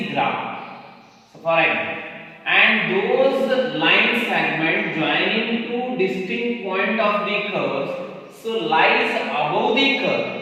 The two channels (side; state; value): both; identical; correlation 1.00